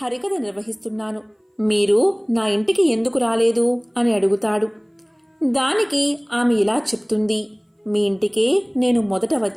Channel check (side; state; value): both; identical; correlation 1.00